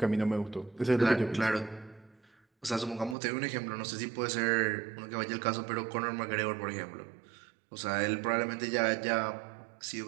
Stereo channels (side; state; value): left; drops out; at 3.2 s